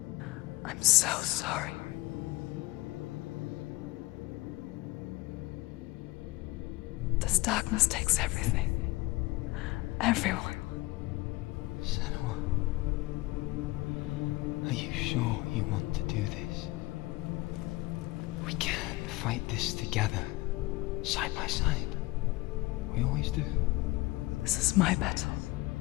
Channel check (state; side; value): quieter; right; 20.5 dB